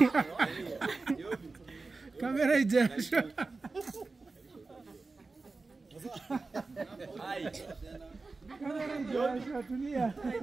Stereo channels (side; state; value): left; quieter; 3.8 dB